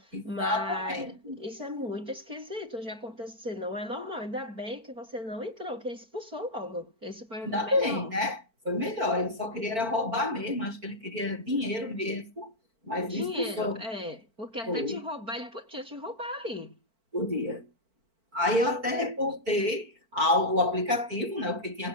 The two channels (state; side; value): late; left; 4.5 ms